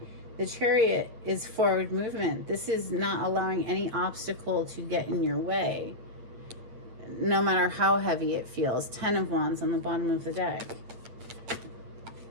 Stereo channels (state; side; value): late; left; 8.6 ms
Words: the Chariot is forward movement. This is not allowing any obstacle to get in your way, no matter how heavy it feels. 10 of Wands on the bottom of the deck.